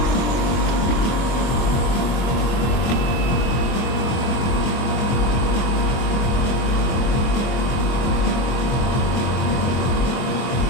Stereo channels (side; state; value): right; late; 23 ms